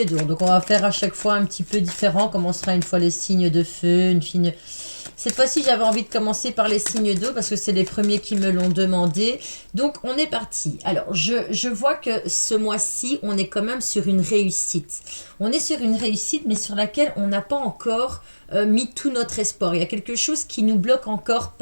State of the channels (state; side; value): inverted; both; correlation -1.00